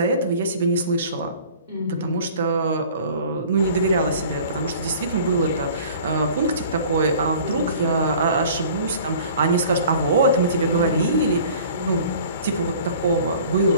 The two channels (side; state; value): both; inverted; correlation -0.47